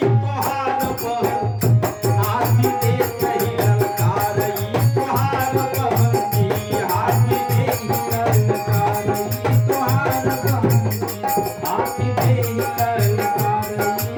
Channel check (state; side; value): identical; both; correlation 1.00